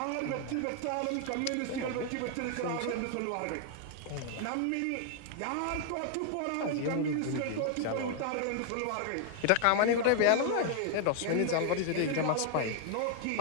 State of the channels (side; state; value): both; different; correlation 0.00